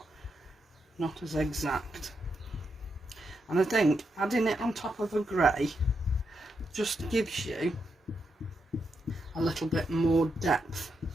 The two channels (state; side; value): normal; both; correlation 0.83